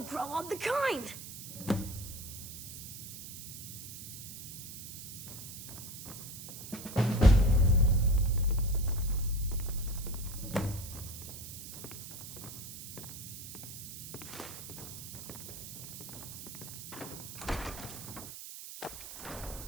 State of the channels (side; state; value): right; noise; hiss, 10 dB below the sound